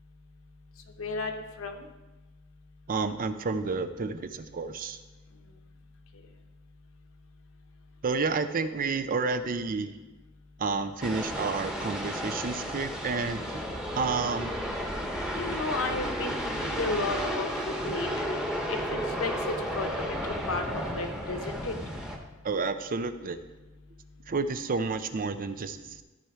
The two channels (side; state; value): both; normal; correlation 0.23